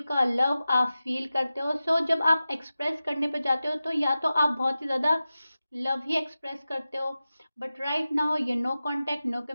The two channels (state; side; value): inverted; both; correlation -0.94